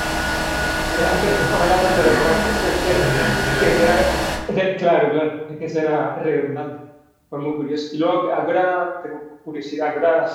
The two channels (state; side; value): identical; both; correlation 1.00